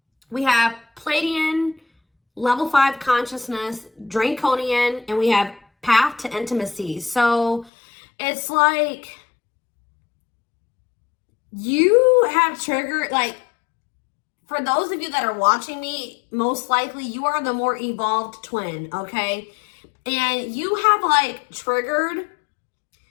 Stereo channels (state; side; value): drops out; right; at 7.7 s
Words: we have Pleiadian, level 5 consciousness, Draconian, and we have path to intimacy. So it's like you have triggered, like, for those of you that are watching me, most likely you are the more evolved twin, okay? And you have like triggered,